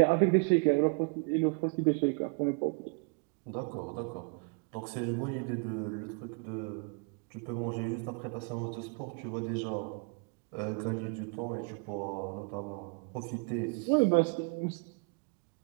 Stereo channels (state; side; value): quieter; left; 33.9 dB